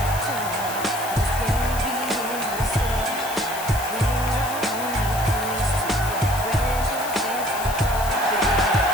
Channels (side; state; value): left; noise; hiss, 10 dB below the sound